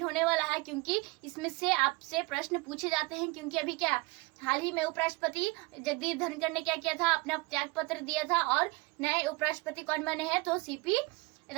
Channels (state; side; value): quieter; left; 24.8 dB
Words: होने वाला है, क्योंकि इसमें से आपसे प्रश्न पूछे जाते हैं। क्योंकि अभी क्या हाल ही में उपराष्ट्रपति जगदीप धनखड़ ने क्या किया था, अपना त्याग पत्र दिया था, और नए उपराष्ट्रपति कौन बने हैं, तो सीपी